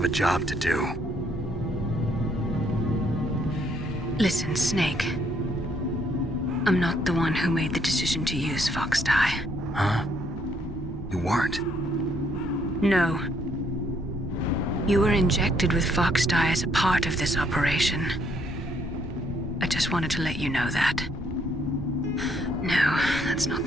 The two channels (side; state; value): both; normal; correlation 0.69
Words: a job to do. Listen, Snake. I'm not the one who made the decision to use Fox Die. Huh? You weren't? No. You were injected with Fox Die as a part of this operation. I just wanted to let you know that. No, that's not